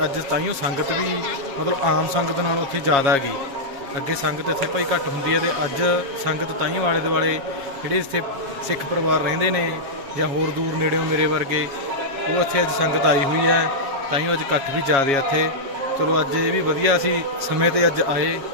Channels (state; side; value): late; left; 7.3 ms